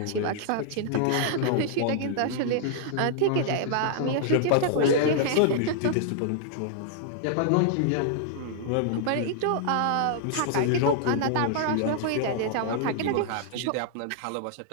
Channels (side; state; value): both; different; correlation -0.01